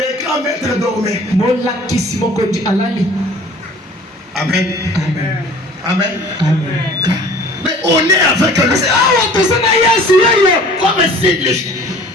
grands maîtres dormaient. Amen. Amen. Amen. Mais on est avec lui. Comme si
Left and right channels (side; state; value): both; normal; correlation 0.48